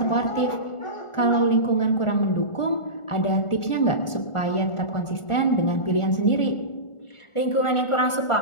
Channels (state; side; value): late; right; 1.4 ms